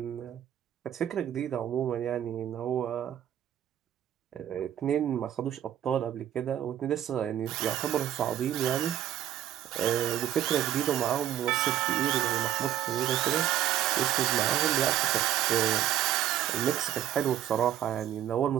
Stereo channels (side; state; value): left; quieter; 11.6 dB